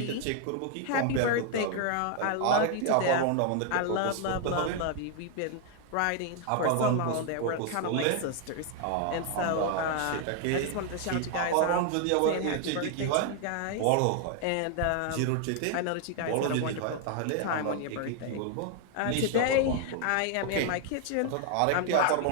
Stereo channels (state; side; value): different; both; correlation 0.01